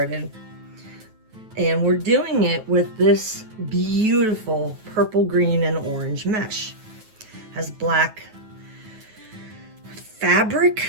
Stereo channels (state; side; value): late; left; 9.3 ms